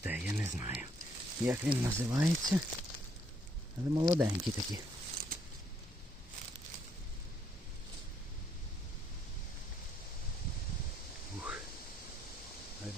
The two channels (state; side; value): normal; both; correlation 0.70